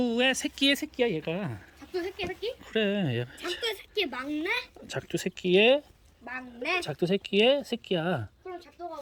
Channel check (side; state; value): both; identical; correlation 1.00